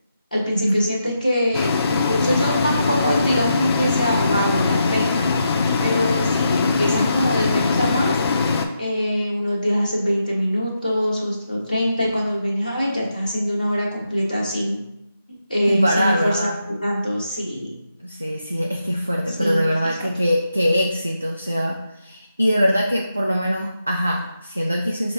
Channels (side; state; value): both; inverted; correlation -0.83